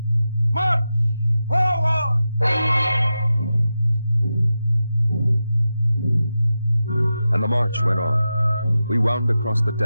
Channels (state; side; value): inverted; both; correlation -0.91